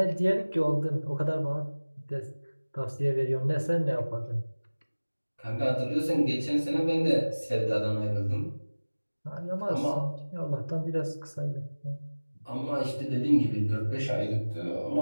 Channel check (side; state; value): both; inverted; correlation -1.00